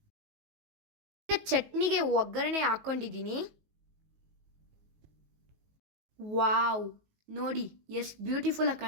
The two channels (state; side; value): late; left; 19 ms